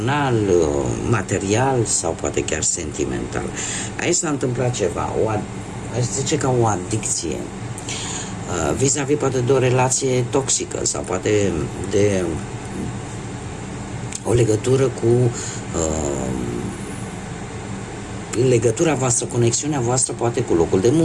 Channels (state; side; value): identical; both; correlation 1.00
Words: material sau poate chiar sentimental. Aici s-a întâmplat ceva, aș zice ca o adicție, vis-a-vis poate de o relație toxică sau poate de o legătură cu legătura voastră, conexiunea voastră poate cu locul de